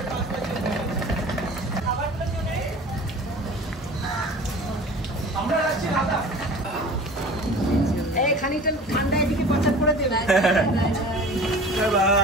খানিকটা ঠান্ডা এদিকে প্রচার করে দেবে।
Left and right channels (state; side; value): normal; both; correlation 0.41